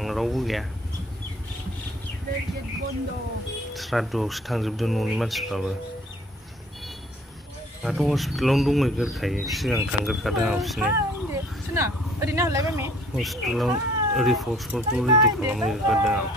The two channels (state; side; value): normal; both; correlation 0.55